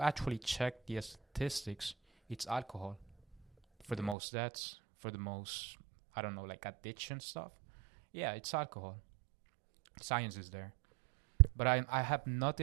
actually check the statistics, it's alcohol for the most deaths, for the most, I don't know, like addiction stuff. Yeah, it's alcohol. Science is there. But I have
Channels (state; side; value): drops out; left; at 4.2 s